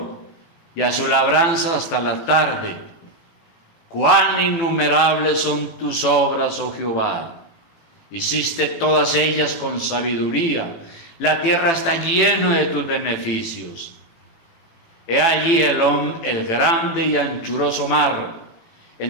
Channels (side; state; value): right; late; 18 ms